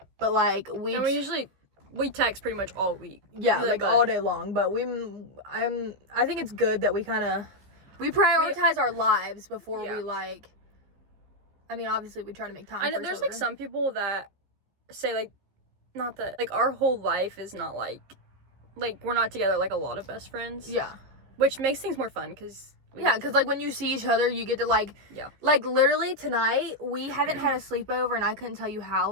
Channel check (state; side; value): late; left; 15 ms